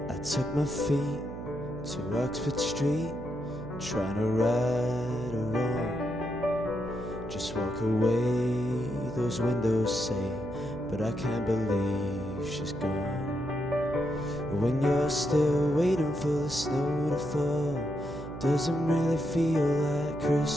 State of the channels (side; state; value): right; noise; hum, 11 dB below the sound